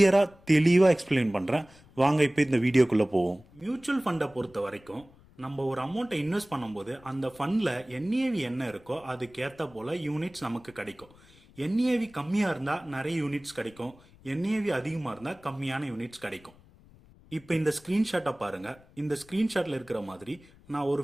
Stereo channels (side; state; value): left; noise; rumble, 26 dB below the sound